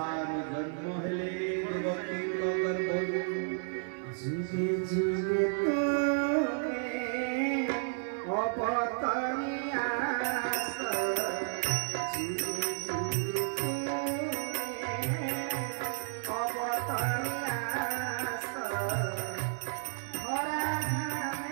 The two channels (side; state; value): left; silent; 56 dB below the other